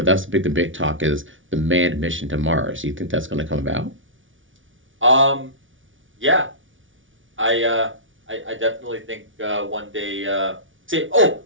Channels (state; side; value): late; left; 0.57 ms